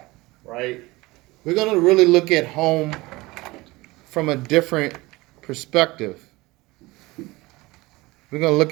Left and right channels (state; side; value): quieter; left; 21.4 dB